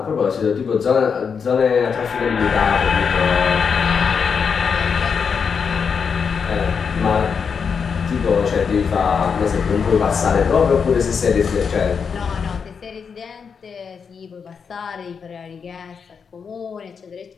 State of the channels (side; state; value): right; quieter; 6.2 dB